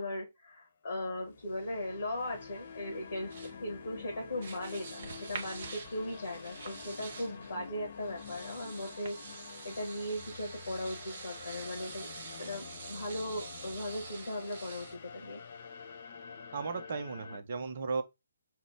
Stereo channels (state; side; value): inverted; both; correlation -0.79